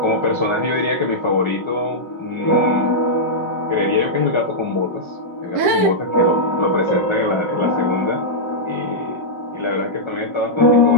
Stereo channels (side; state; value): left; late; 5.5 ms